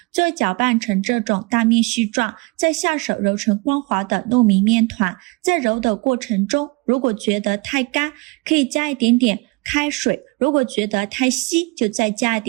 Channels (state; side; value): quieter; left; 26.6 dB